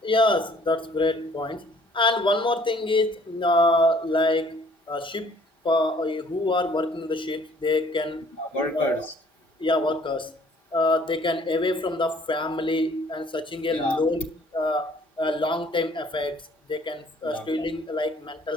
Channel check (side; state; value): both; normal; correlation 0.58